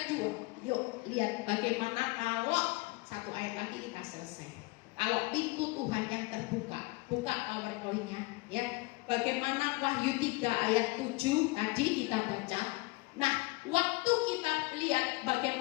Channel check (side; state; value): right; quieter; 24.7 dB